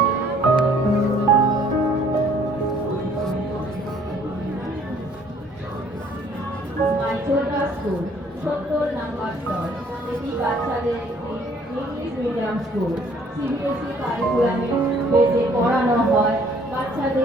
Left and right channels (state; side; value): normal; both; correlation 0.60